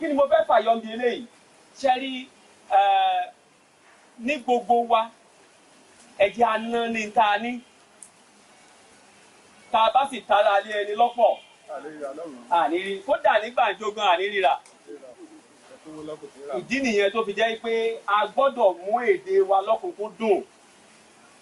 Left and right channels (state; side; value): identical; both; correlation 1.00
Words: ni mo fẹ́ fàyọ bí eléyìí? Ṣé rí ní gbogbo wa ẹ̀jẹ̀ aná ní ta ní. Tá a bá sì tara lé ẹni lọ́pọ̀ àníri kódà nígbà jógan ànírira. Ìdí nìyẹn tó fi jẹ́ pé a gbọ́dọ̀ mú èdè wa lọ́kùnkúndùn